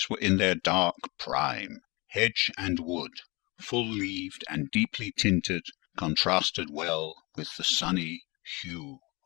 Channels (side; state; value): right; quieter; 25.9 dB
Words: were in their dark prime, hedge and wood, full-leaved and deeply tinted, contrasted well with the sunny hue